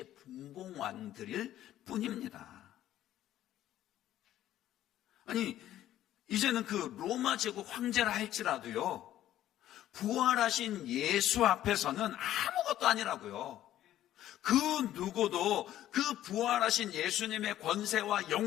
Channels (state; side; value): quieter; right; 12.8 dB